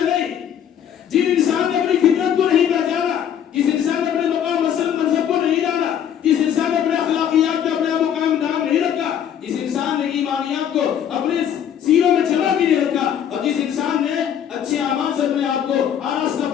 نہیں. جن انسان نے اپنی فطرت کو نہیں پہچانا، جس انسان نے اپنے مقام منصب کو نہیں جانا، جس انسان نے اپنے اخلاقیات میں اپنے مقام نام نہیں رکھا، جس انسان نے ایمانیات کو اپنے سیروں میں جمع بھی نہیں رکھا، اور جس انسان نے اچھے اعمال سے اپنے آپ کو آراستہ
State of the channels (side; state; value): right; quieter; 9.2 dB